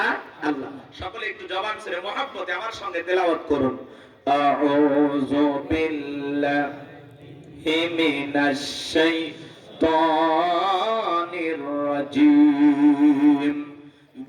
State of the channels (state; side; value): identical; both; correlation 1.00